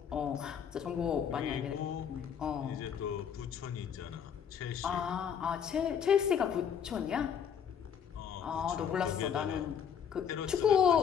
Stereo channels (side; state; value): right; quieter; 7.9 dB